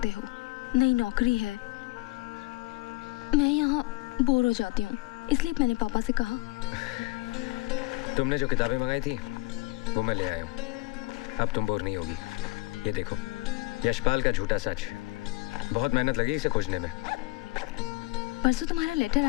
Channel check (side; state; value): right; quieter; 21.0 dB